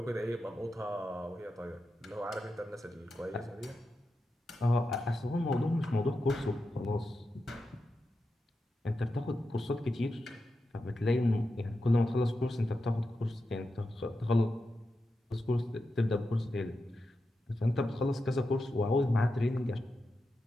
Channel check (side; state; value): both; normal; correlation 0.89